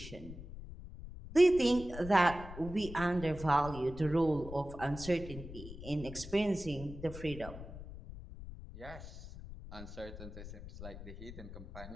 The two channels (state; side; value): noise; left; rumble, 12 dB below the sound